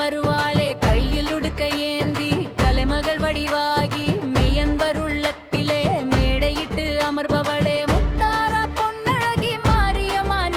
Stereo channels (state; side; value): identical; both; correlation 1.00